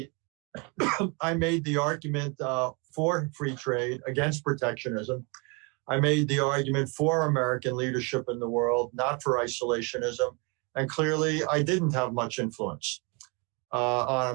I made the argument for free trade, against protectionism. I made the argument for American leadership in the world, not for isolationism. And clearly, I didn't have much influence on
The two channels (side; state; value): left; quieter; 31.6 dB